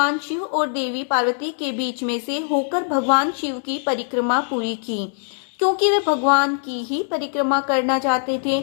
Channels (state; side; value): silent; right; 61 dB below the other